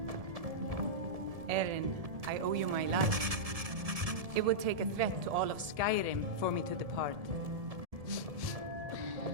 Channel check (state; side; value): late; left; 1.7 ms